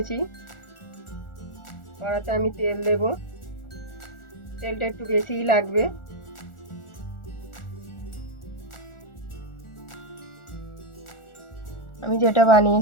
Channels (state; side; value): late; right; 1.4 ms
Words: কড়াতে আমি তেল দেব। তেলটা একটু বেশিই লাগবে। আমি যেটা